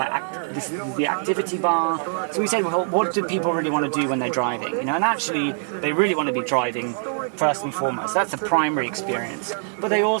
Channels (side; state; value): left; silent; 63 dB below the other